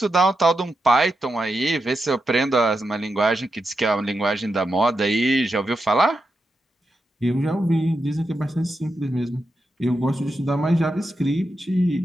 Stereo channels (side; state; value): both; normal; correlation 0.87